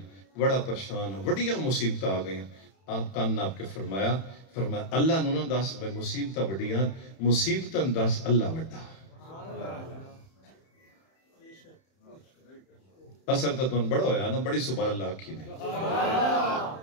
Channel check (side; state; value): right; late; 31 ms